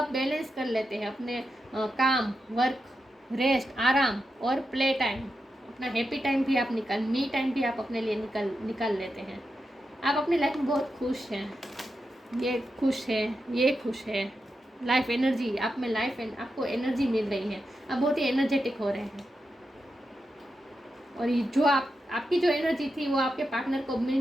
बैलेंस कर लेते हैं अपने काम, वर्क, रेस्ट, आराम और प्ले टाइम। अपना हैप्पी टाइम भी आप मी टाइम भी आप अपने लिए निकाल लेते हैं। आप अपनी लाइफ में बहुत खुश हैं, ये खुश है, ये खुश है। लाइफ एनर्जी आप में, आपको एनर्जी मिल रही है, आप बहुत ही एनर्जेटिक हो रहे हैं। और ये जो आपकी जो एनर्जी थी वो आपके पार्टनर को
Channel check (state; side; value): normal; both; correlation 0.88